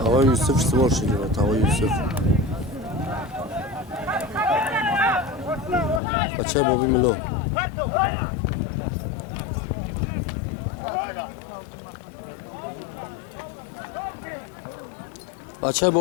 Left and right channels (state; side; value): drops out; right; at 6.0 s